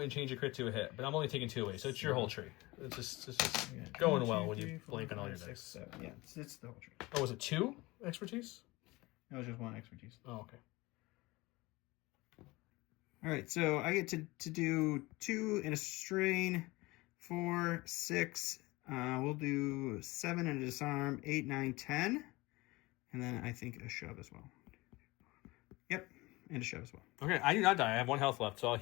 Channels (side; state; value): right; quieter; 21.8 dB